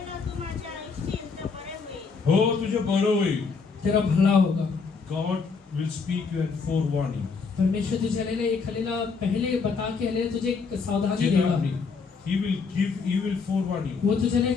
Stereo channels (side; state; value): right; quieter; 5.0 dB